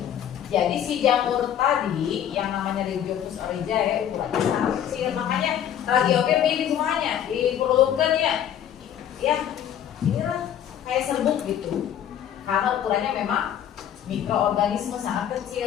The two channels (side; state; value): right; quieter; 10.0 dB